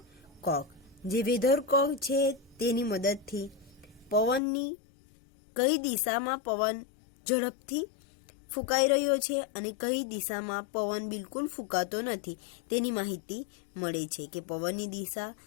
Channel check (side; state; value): right; drops out; at 4.4 s